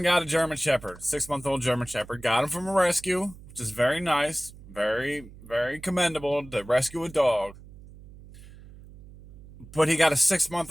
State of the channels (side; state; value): right; noise; hum, 19 dB below the sound